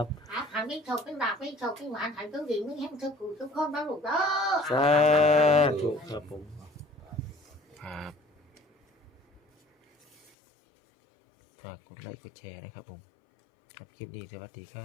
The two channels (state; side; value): drops out; right; at 10.3 s